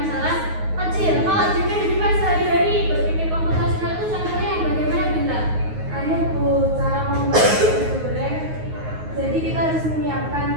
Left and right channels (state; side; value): late; left; 9.5 ms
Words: kecil. Kalau di kehidupan sehari-hari berpikir komputasional itu contohnya yang bagaimana, Bintang? Bu, cara membuat nasi goreng. Jadi kita harus menyiapkan